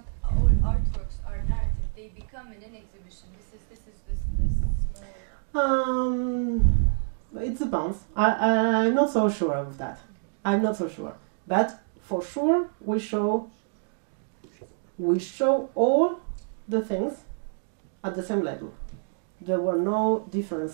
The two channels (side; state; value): left; silent; digital silence